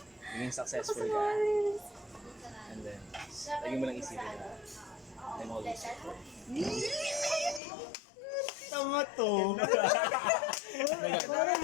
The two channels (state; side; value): drops out; right; at 7.6 s